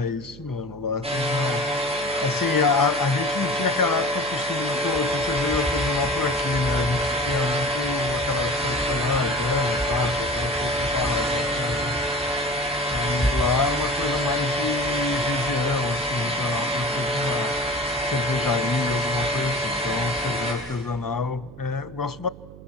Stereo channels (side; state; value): right; noise; hum, 17 dB below the sound